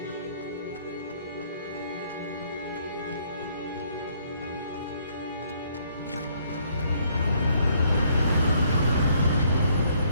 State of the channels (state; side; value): inverted; both; correlation -0.67